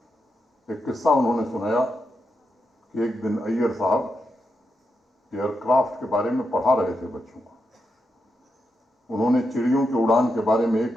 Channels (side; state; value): both; normal; correlation 0.85